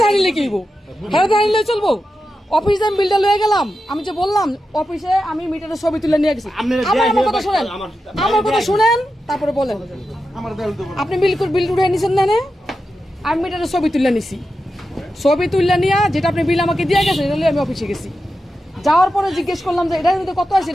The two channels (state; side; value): normal; both; correlation 0.90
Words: জানিলে কি হইব? হ্যাঁ জানিলে চলবো। অফিসে আমি বিলটা লয়ে গেলাম, আমি যে বললাম অফিসে আমি মিটারের ছবি তুলে নিয়ে গেছি। আমার কথা শুনেন, আমার কথা শুনেন, তারপরে বলেন। আপনি বিল উঠে নিছেন না? আমি মিটারের ছবি তুলে নিছি। ছবি তুললে নিয়ে যেটা আপনি বিল আমাকে দিয়ে গেছেন, এটা আমি অফিসে গেছি। যাওয়ার পরে জিজ্ঞেস করলাম যে এটার মধ্যে কত আছে,